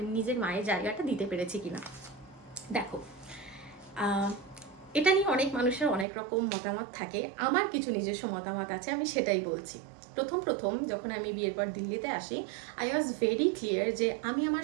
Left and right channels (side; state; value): left; drops out; at 6.1 s